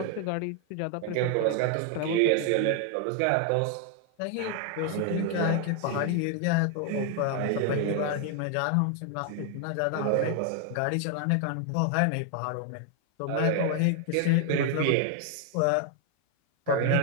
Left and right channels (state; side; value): different; both; correlation 0.00